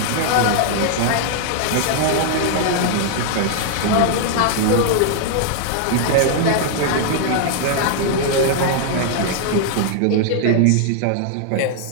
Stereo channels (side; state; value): both; different; correlation 0.00